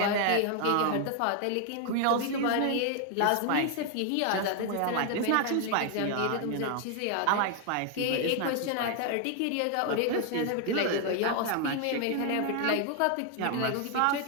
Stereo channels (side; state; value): both; different; correlation 0.00